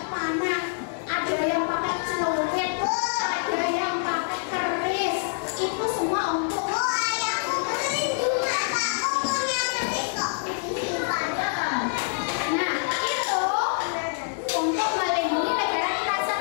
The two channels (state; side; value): silent; right; digital silence